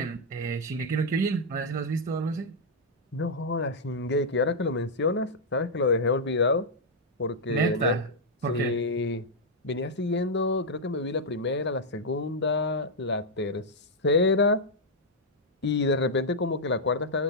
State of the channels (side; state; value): both; normal; correlation -0.05